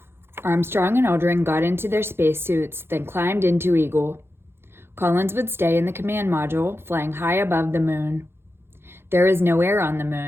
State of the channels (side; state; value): left; late; 0.11 ms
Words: Armstrong and Aldrin got into their spacesuits, then climbed into Eagle. Collins would stay in the command module, flying high above the moon. There is no air on the